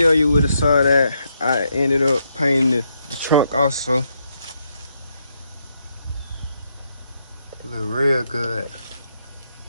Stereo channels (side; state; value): both; inverted; correlation -0.78